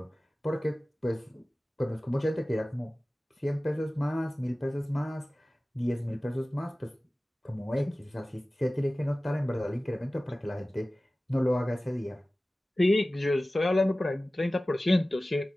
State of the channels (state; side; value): normal; both; correlation 0.97